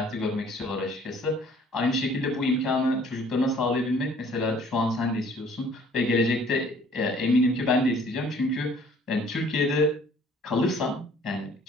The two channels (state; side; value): normal; both; correlation 0.55